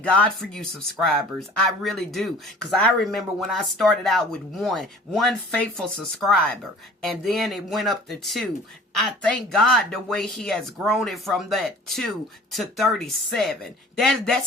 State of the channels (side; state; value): both; normal; correlation 0.47